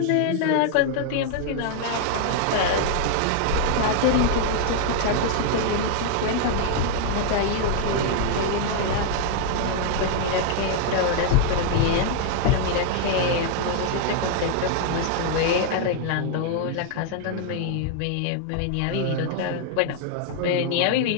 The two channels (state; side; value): different; both; correlation 0.00